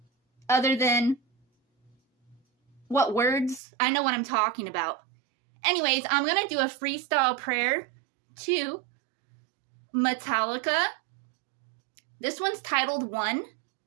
other than what words, I know what I'm talking about. Anyways, I'm going to do a freestyle prayer to Metallica. This one's titled One.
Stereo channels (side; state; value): left; drops out; at 3.6 s